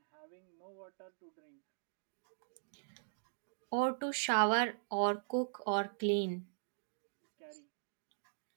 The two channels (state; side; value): silent; left; digital silence